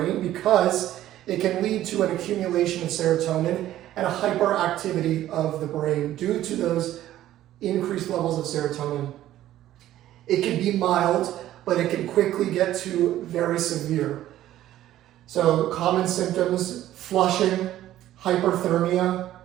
because it can lead to an accumulation of serotonin and a hyperactivity of the brain due to those increased levels of serotonin. It can be mild, but it can quickly get to very severe. So common symptoms: flushing, hyperthermia,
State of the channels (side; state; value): left; quieter; 13.4 dB